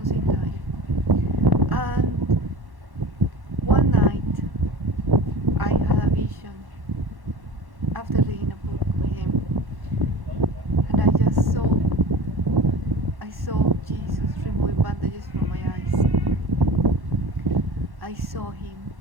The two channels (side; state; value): left; late; 1.1 ms